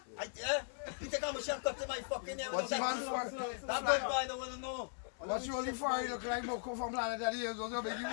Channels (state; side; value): silent; right; 52 dB below the other